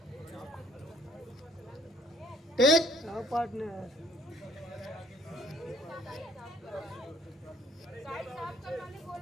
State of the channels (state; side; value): normal; both; correlation 0.60